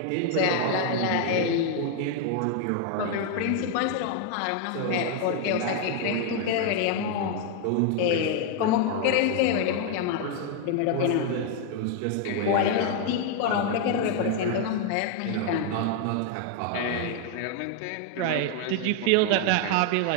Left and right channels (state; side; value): different; both; correlation 0.00